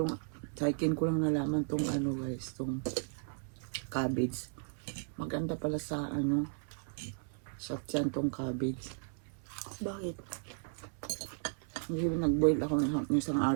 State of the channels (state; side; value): silent; left; 54 dB below the other